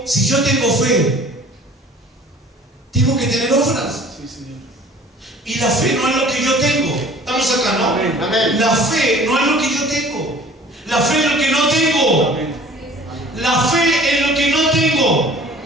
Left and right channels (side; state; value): both; normal; correlation 0.49